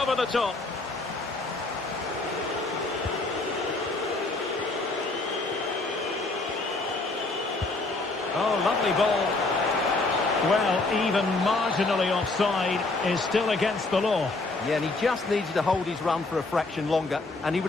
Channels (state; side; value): quieter; right; 3.3 dB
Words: the top. Oh, lovely ball. Well, even marginally offside is still against the law. Yeah, and he just needed to hold his run for a fraction longer, and he